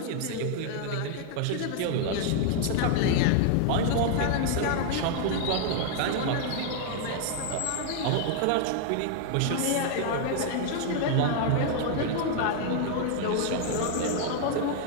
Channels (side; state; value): both; different; correlation 0.00